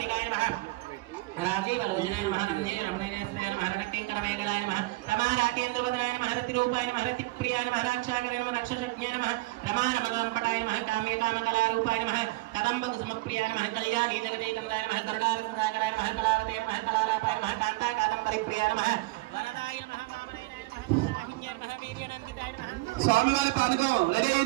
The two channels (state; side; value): quieter; left; 22.0 dB